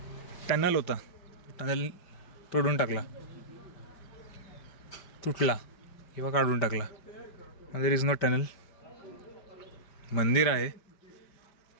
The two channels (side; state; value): right; late; 5.1 ms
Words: टनल होता, टनल तोडून टाकला, तुटला किंवा काढून टाकला. There is no tunnel. मंदिर आहे,